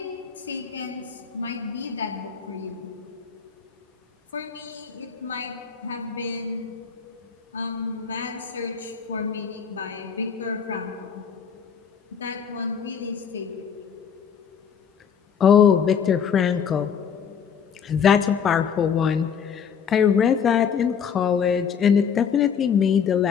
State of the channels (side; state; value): right; quieter; 7.2 dB